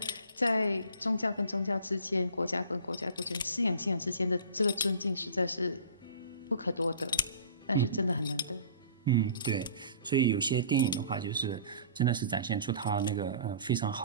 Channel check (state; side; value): inverted; both; correlation -0.45